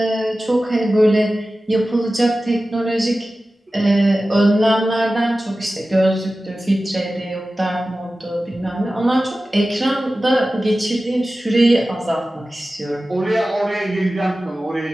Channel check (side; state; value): both; normal; correlation 0.95